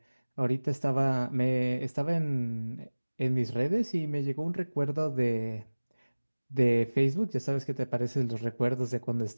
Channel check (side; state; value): both; inverted; correlation -1.00